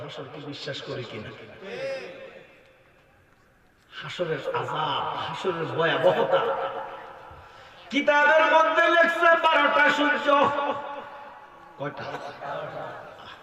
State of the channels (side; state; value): both; identical; correlation 1.00